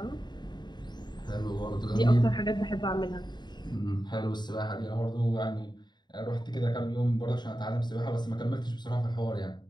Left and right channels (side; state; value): right; late; 0.21 ms